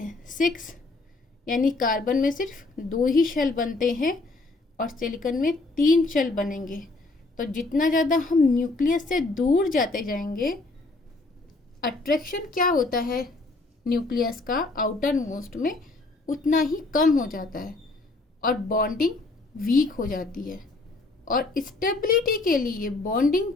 6, यानी कार्बन में सिर्फ 2 ही शेल बनते हैं और सिलिकॉन में 3 शेल बनेंगे। तो जितना ज़्यादा हम न्यूक्लियस से दूर जाते जाएंगे, अट्रैक्शन क्या होता है न्यूक्लियस का आउटर मोस्ट में, उतना ही कम हो जाता है और बॉन्डिंग वीक हो जाती है। और स्टेबिलिटी के लिए बॉन्डिंग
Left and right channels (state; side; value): quieter; right; 3.2 dB